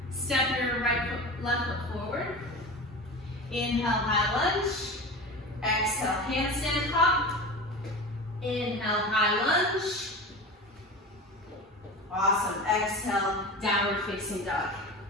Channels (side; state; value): both; normal; correlation 0.30